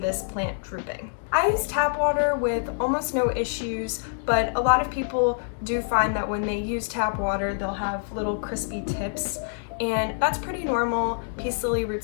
plant drooping. I use tap water with almost no issues, but a lot of people do find that when they use tap water, they'll have little crispy tips. And that's pretty normal. Peace lily root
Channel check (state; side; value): silent; right; digital silence